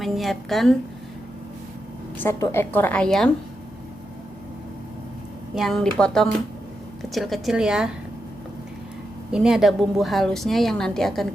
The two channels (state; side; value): normal; both; correlation 0.86